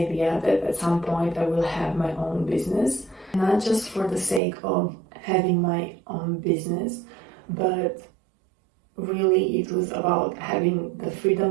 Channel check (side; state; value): left; drops out; at 4.4 s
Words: that at some point I will have my own business. Not just for the sake of having my own business, but really it was about having the